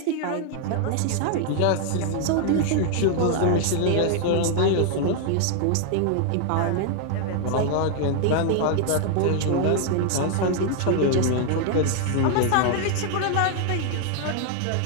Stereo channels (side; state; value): both; different; correlation 0.00